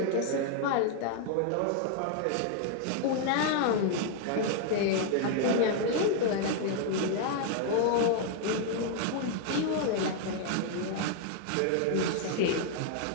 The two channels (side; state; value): both; different; correlation 0.00